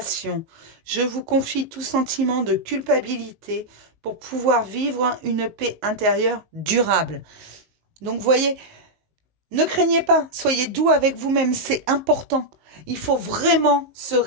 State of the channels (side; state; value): left; late; 19 ms